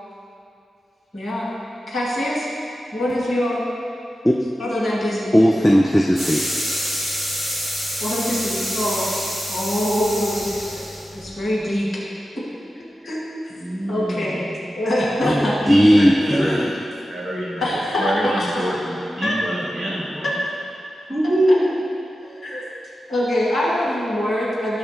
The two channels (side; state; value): both; normal; correlation 0.93